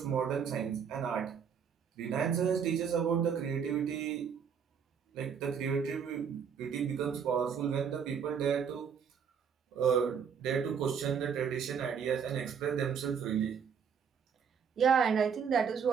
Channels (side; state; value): left; quieter; 7.1 dB